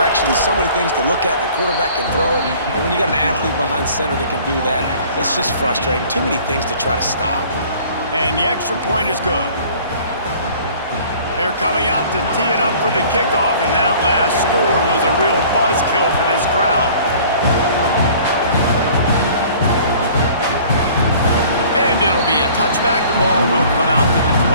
There's so many things to look at. The quarterback can throw it, but when you got an athlete behind center that can do that, it's just frustrating. Too many things to try to stop. And the extra point is good. They're coming out to tee it up for the kickoff, and that last score was a real buzzkill for this crowd. And it'll be a touchback. The ball will come out to the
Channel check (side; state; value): both; inverted; correlation -0.50